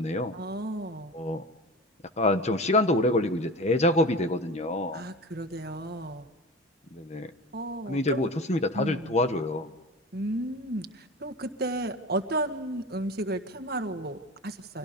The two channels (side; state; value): both; normal; correlation 0.32